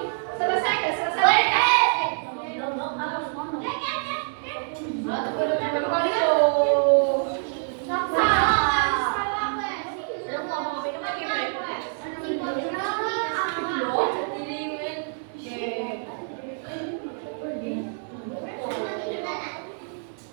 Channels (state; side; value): silent; left; 60 dB below the other